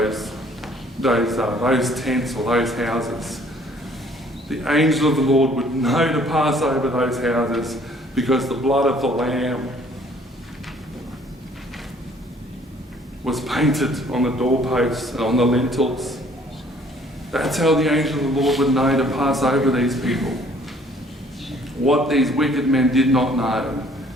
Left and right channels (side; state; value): both; normal; correlation 0.58